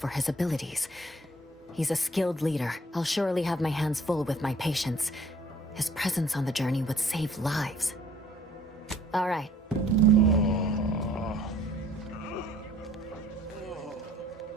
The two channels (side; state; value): both; normal; correlation 0.56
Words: his abilities. He's a skilled leader. I'll surely have my hands full with my patients. His presence on the journey would save lives. All right.